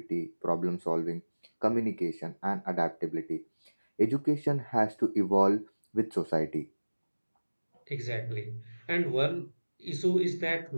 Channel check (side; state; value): both; inverted; correlation -1.00